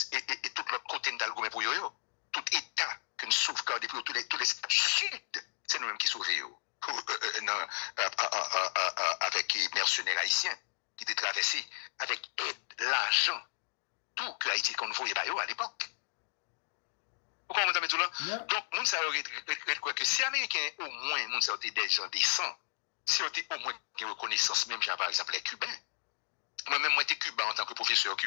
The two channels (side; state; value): right; silent; digital silence